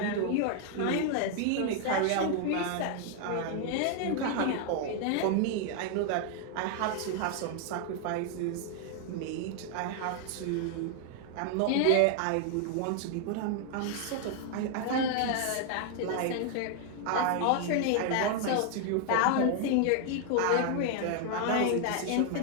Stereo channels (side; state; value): both; different; correlation 0.00